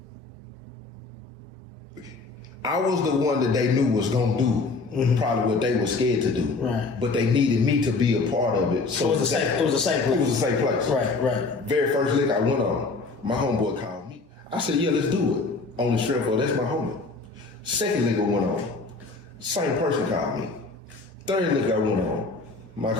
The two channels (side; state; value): right; quieter; 3.9 dB